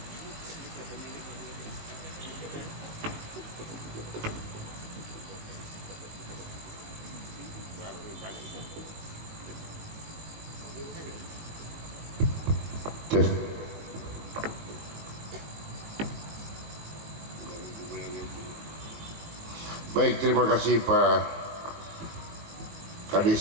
baik, terima kasih Pak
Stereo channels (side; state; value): left; late; 18 ms